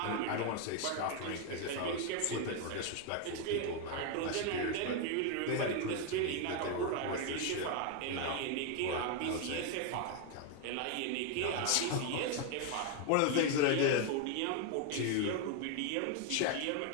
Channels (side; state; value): both; different; correlation 0.01